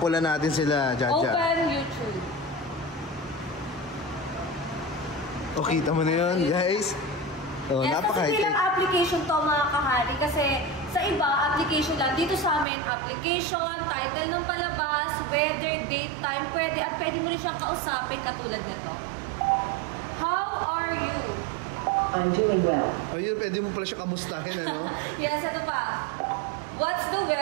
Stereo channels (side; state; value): left; drops out; at 12.7 s